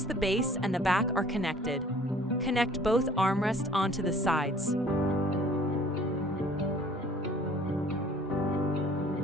the base and the back are connected, connect both armrests onto the sides.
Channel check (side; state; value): both; normal; correlation 0.53